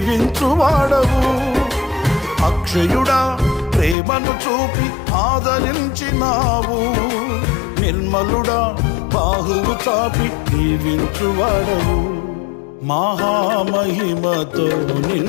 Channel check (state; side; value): drops out; right; at 4.0 s